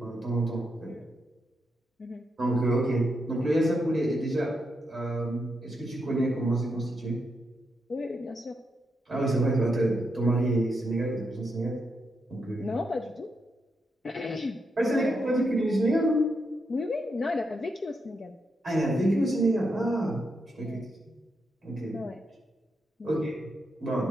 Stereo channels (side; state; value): both; normal; correlation 0.83